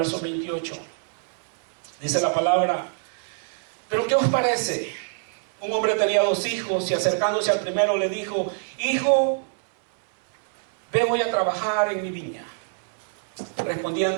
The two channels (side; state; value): left; silent; 62 dB below the other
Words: 28. Dice la palabra: pero ¿qué os parece? Un hombre tenía 2 hijos y acercándose al primero le dijo: hijo, ve hoy a trabajar en mi viña.